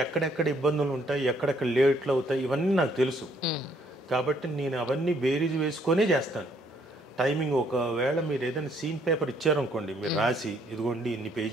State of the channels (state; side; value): normal; both; correlation 0.67